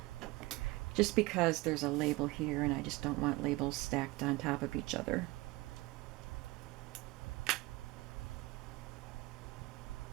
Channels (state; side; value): quieter; left; 21.6 dB